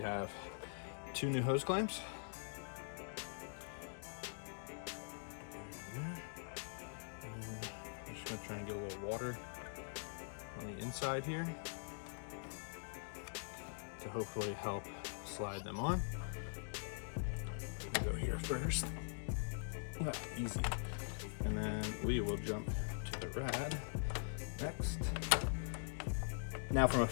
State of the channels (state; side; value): silent; right; digital silence